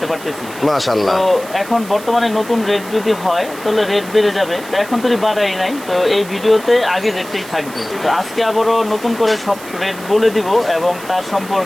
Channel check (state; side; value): noise; right; hiss, 17 dB below the sound